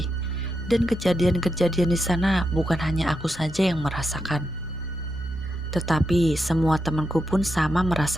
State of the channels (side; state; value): both; normal; correlation 0.86